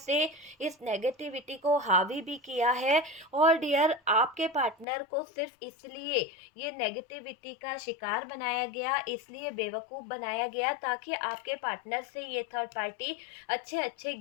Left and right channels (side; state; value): right; drops out; at 4.9 s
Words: इस नेगेटिविटी को हावी भी किया है। और डियर, आपके पार्टनर को सिर्फ इसलिए ये नेगेटिविटी का शिकार बनाया गया, इसलिए बेवकूफ़ बनाया गया, ताकि आपके पार्टनर से ये थर्ड पार्टी अच्छे अच्छे